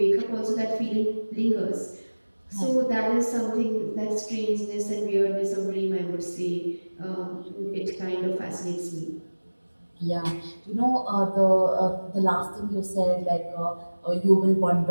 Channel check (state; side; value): inverted; both; correlation -1.00